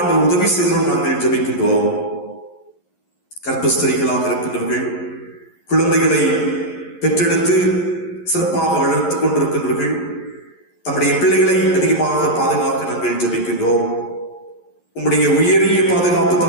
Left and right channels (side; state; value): right; late; 11 ms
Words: உதவி செய்தோம் நாங்கள் ஜெபிக்கின்றோம். கர்ப்பஸ்திரிகளாக இருக்கின்றவர்கள், குழந்தைகளை பெற்றெடுத்து சிறப்பாக வளர்த்துக் கொண்டிருக்கின்றவர்கள், தம்முடைய பிள்ளைகளை அதிகமாக பாதுகாக்க நாங்கள் ஜெபிக்கின்றோம். உம்முடைய உயரிய பாதுகாப்பு